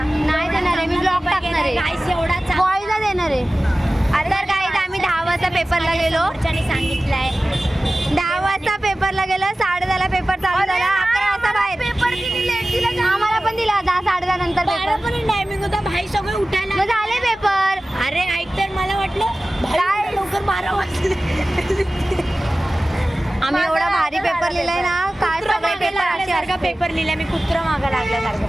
नाही देणार आहे, मी ब्लॉग टाकणार आहे. बॉयला देणार आहे. तर गाईज आम्ही 10 वाजता पेपरला गेलो. सांगितलंय 10 वाजता पेपरला गेलो. 10:30ला पेपर चालू झाला. 11 वाजता बाहेर. पेपर किती लेट दिला? आम्हाला पण दिला 10 10:30 नंतर पेपर. पण टायमिंग होता. भाई सगळे उठायला मग झाले पेपर. अरे ऐक तर, मला वाटलं भाई लवकर 12 वाजले. आम्ही एवढा भारी पेपर लिहिलाय ना. काय सगळे पेपर अशासारखा पेपर लिहिलाय. मी कुत्र मागं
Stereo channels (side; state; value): both; normal; correlation 0.97